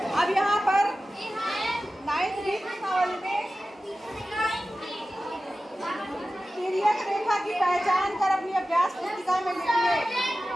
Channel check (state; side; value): normal; both; correlation 0.95